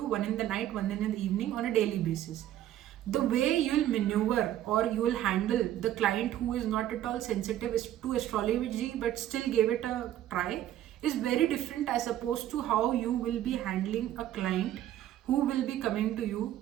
one in the night, one in the evening, on a daily basis. The way you'll maneuver or you will handle the client who is not at all sensitive to astrology but still gave it a try is very different as opposed to how you will be handling a client who will be coming to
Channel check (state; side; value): quieter; left; 12.4 dB